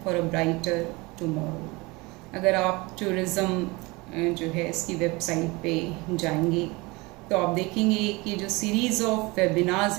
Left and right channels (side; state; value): left; quieter; 24.5 dB